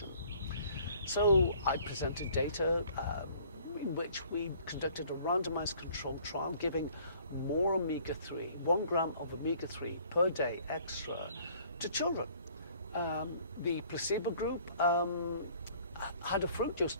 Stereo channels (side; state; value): both; inverted; correlation -0.56